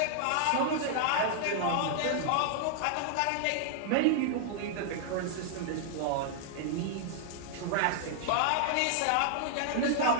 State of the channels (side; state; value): both; different; correlation -0.01